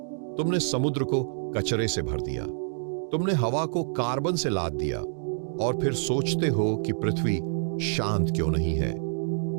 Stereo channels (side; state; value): left; silent; digital silence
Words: तुमने समुद्र को कचरे से भर दिया। तुमने हवा को कार्बन से लाद दिया और फिर सोचते हो कि पृथ्वी शांत क्यों नहीं है।